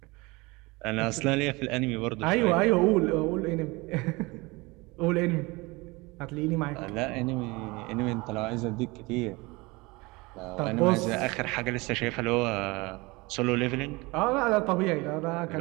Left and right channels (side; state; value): left; quieter; 24.2 dB